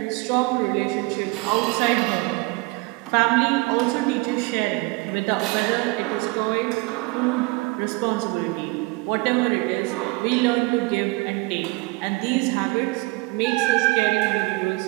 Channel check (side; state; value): left; quieter; 24.7 dB